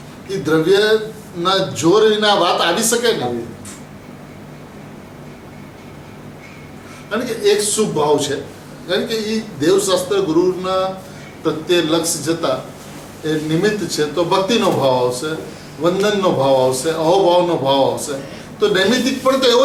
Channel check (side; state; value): both; identical; correlation 1.00